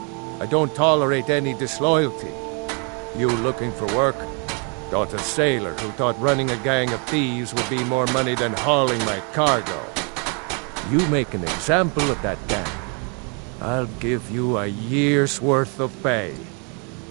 I don't tolerate any disloyalty. You looking for work? Got a sailor who thought running a gang of thieves would be more money than hauling my cargo. You make an example of that gang, I'll give you a year's worth of pay.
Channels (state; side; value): quieter; left; 36.3 dB